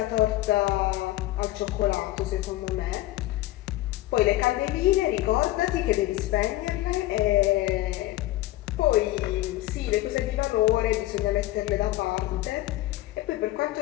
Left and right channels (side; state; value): right; quieter; 16.4 dB